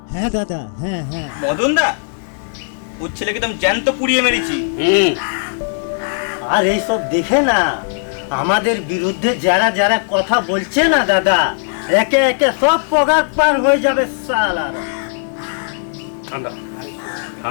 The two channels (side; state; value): right; silent; 68 dB below the other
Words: হ্যাঁ দাদা, হ্যাঁ হ্যাঁ। মদন দা ওর ছেলেকে তো আমি জ্যান্ত পুড়িয়ে মেরেছি। আর এইসব দেখে না আমাদের বিরুদ্ধে যারা যারা কথা বলছে না দাদা, একে একে সব পগার পার হয়ে যাবে সালার। ঠান্ডা